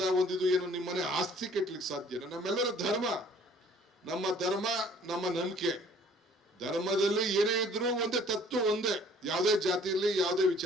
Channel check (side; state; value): both; normal; correlation 0.55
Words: ಒಂದಿದು ಏನು ನಿಮ್ಮನೆ ಆಸ್ತಿ ಕೆಟ್ಲಿಕ್ಕೆ ಸಾಧ್ಯನಾ? ನಮ್ಮೆಲ್ಲರ ಧರ್ಮ, ನಮ್ಮ ಧರ್ಮ, ನಮ್ಮ ನಂಬಿಕೆ. ಧರ್ಮದಲ್ಲಿ ಏನೇ ಇದ್ರು ಒಂದೇ ತತ್ವ, ಒಂದೇ, ಯಾವುದೇ ಜಾತಿಯಲ್ಲಿ ಯಾವುದೇ